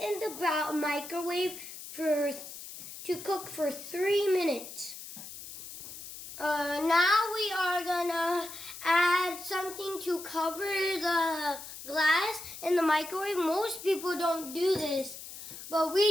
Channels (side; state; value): left; noise; hiss, 12 dB below the sound